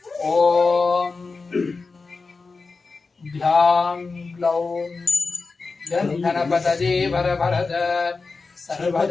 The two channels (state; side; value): quieter; right; 4.2 dB